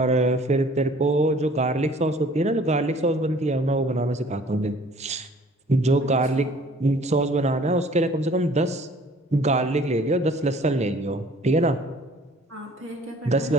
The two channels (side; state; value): both; normal; correlation 0.53